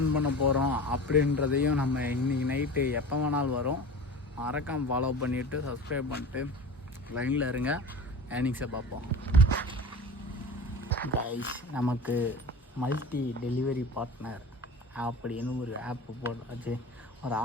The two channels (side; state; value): both; normal; correlation 0.34